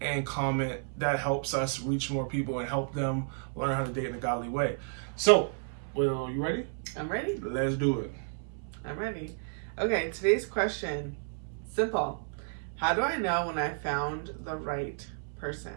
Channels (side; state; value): left; silent; 57 dB below the other